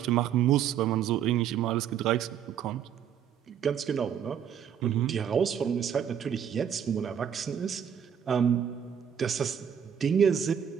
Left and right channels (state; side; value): quieter; left; 8.6 dB